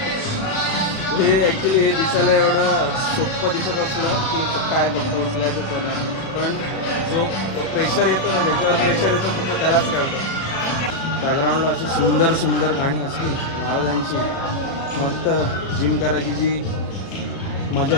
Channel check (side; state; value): right; late; 36 ms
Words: हे ॲक्च्युली हे दिसायला एवढं सोपं दिसत असलं की काय फक्त उचलायचंच आहे ना, पण जो प्रेशर येतो ना, ज्याच्यावर प्रेशर येतो फक्त त्यालाच कळतं. बॅकग्राऊंडला अशी सुंदर सुंदर गाणी असली महाराजांची, मस्त जिम करायची जी मजा